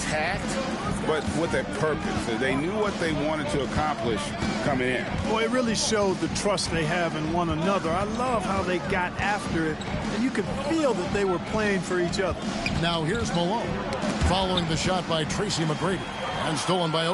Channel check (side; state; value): both; identical; correlation 1.00